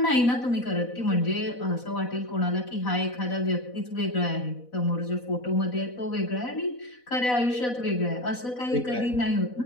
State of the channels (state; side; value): late; right; 4.1 ms